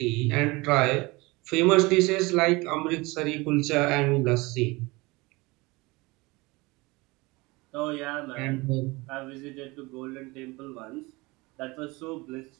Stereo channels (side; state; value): left; quieter; 23.5 dB